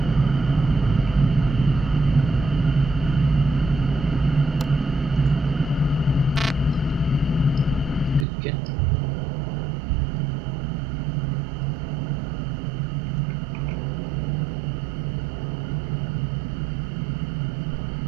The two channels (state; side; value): drops out; left; at 8.2 s